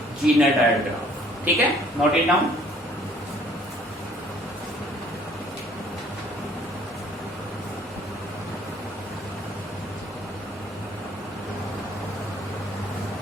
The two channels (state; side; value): normal; both; correlation 0.58